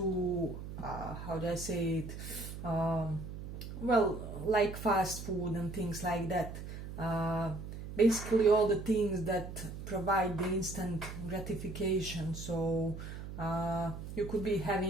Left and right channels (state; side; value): noise; right; hum, 9 dB below the sound